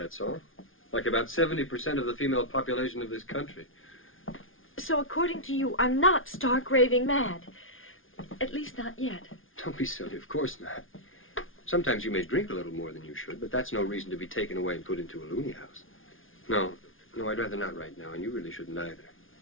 all. Like about 70% of the female population of this country. So according to you, I'm not stark raving mad. At least not yet. Don't be silly, of course not. Sometimes you may drink a little more than you should, but that's no reason to be taken away and put into a loony house. No, I'd rather not right now, and you really shouldn't either.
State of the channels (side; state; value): right; late; 0.59 ms